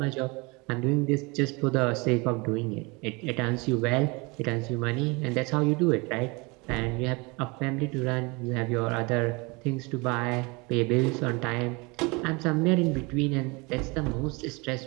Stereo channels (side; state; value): left; quieter; 27.5 dB